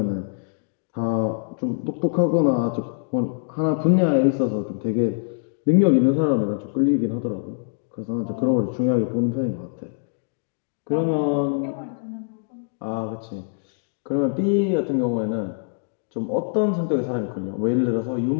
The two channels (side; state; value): right; silent; digital silence